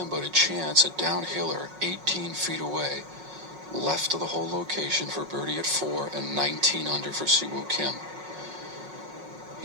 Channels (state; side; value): late; left; 5.4 ms